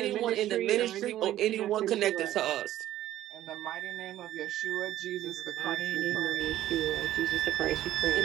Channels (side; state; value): left; quieter; 13.3 dB